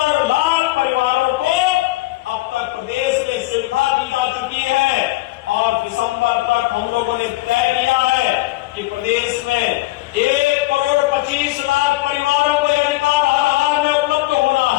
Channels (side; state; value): right; quieter; 19.2 dB